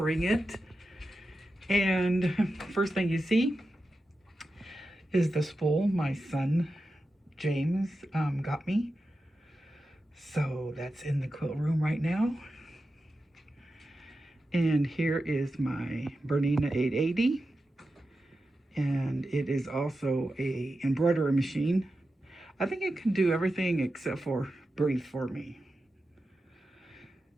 it. And first thing you see is the spool my son James got me. So that's in the quilt room right now. And here is my Bernina 880. And it is also a embroidery machine. I think it can do everything except for breathe for me.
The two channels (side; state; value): both; normal; correlation 0.91